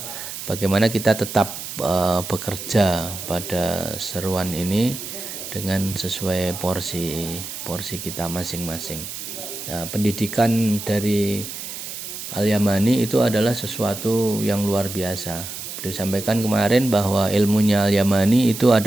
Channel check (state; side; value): noise; right; hiss, 9 dB below the sound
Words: bagaimana kita tetap bekerja pada seruan ini dengan sesuai porsi kita masing-masing. Nah, pendidikan dari Al-Yamani itu adalah sesuatu yang luar biasa. Beliau sampaikan kemarin bahwa ilmunya Al-Yamani itu